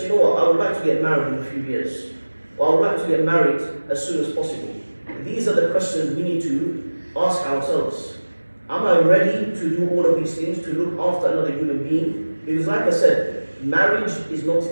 you know what, I would like to get married in a few years, or I would like to get married as soon as possible, these are the questions we need to ask ourselves. Am I ready to do all of these things, to look after another human being? Because like I said, marriage is not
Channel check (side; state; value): both; inverted; correlation -1.00